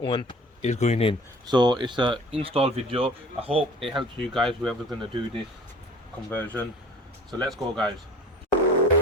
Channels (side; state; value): both; normal; correlation 0.45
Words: one is going in. So it's a install video. I hope it helps you guys, whoever's gonna do this conversion. So let's go guys.